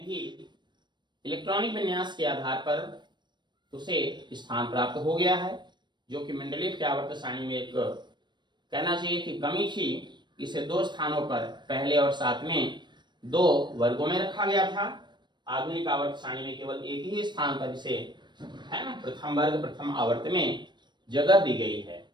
ही इलेक्ट्रॉनिक विन्यास के आधार पर उसे स्थान प्राप्त हो गया है, जो कि मेंडलीव के आवर्त सारणी में एक कहना चाहिए कि कमी थी। इसे 2 स्थानों पर पहले और 7 में 2 वर्गों में रखा गया था। आधुनिक आवर्त सारणी में केवल एक ही स्थान पर इसे, है ना, प्रथम वर्ग प्रथम आवर्त में जगह दी गई है।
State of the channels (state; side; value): late; left; 0.22 ms